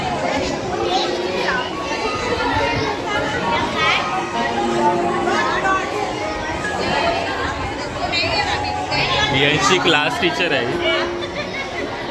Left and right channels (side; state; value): both; identical; correlation 1.00